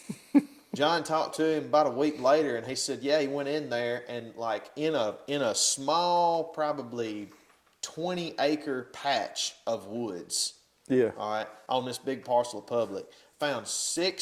John talked to him about a week later, and he said, "Yeah, he went in there and like in a small, probably 20-acre patch of woods." Yeah. All right, on this big parcel of public, found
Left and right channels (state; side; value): identical; both; correlation 1.00